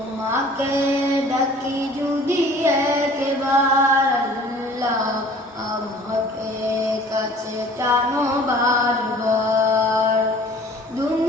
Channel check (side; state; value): both; normal; correlation 0.50